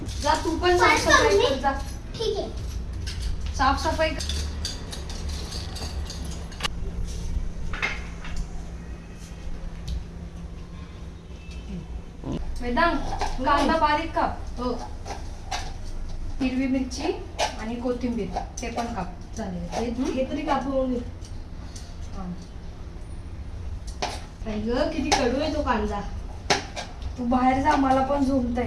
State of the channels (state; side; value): identical; both; correlation 1.00